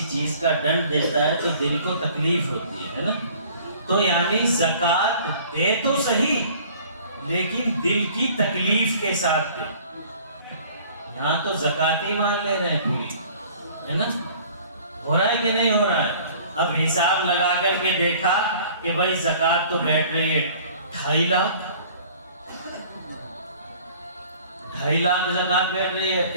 چیز کا ڈنڈ دیتا ہے تو دل کو تکلیف ہوتی ہے نا, تو یعنی زکوٰۃ دے تو صحیح لیکن دل کی تکلیف کے ساتھ دے. یہاں تو زکوٰۃ ہی مان لے رہے ہیں پوری, ہے نا, ہو رہا ہے کہ نہیں ہو رہا ہے. اب حساب لگا کر کے دیکھا کہ بھائی زکوٰۃ تو بیٹھ رہی ہے 2.5 لاکھ, 2.5 لاکھ زکوٰۃ بیٹھ رہی ہے.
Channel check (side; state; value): both; inverted; correlation -0.51